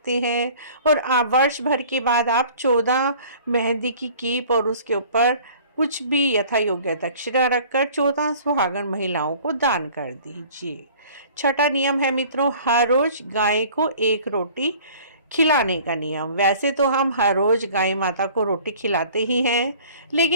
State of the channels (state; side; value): inverted; both; correlation -0.49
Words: हैं, और वर्ष भर के बाद आप 14 मेहंदी की कीप और उसके ऊपर कुछ भी यथा योग्य दक्षिणा रखकर 14 सुहागन महिलाओं को दान कर दीजिए। 6वां नियम है मित्रों हर रोज गाय को 1 रोटी खिलाने का नियम। वैसे तो हम हर रोज गाय माता को रोटी खिलाते ही हैं,